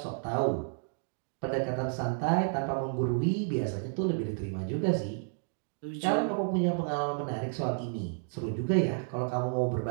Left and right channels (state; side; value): silent; left; digital silence